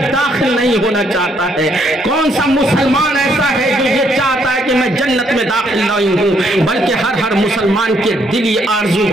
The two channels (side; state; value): both; normal; correlation 0.70